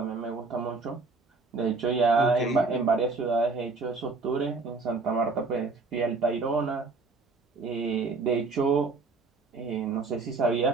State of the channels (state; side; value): quieter; left; 4.0 dB